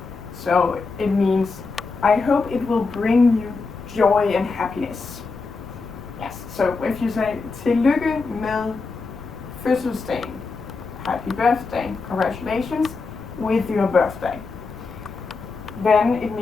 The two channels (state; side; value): quieter; right; 4.2 dB